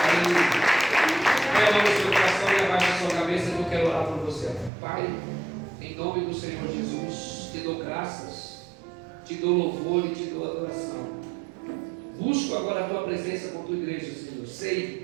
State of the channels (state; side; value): drops out; left; at 4.7 s